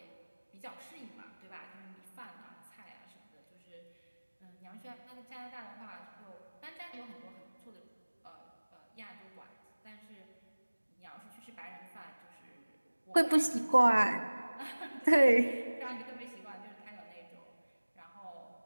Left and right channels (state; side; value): inverted; both; correlation -1.00